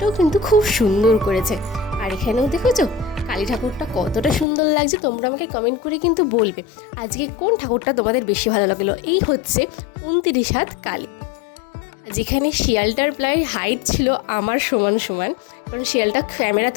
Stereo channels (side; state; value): right; drops out; at 4.5 s